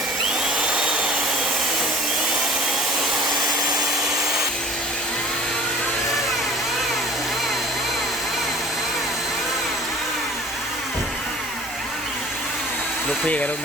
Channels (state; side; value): normal; both; correlation 0.47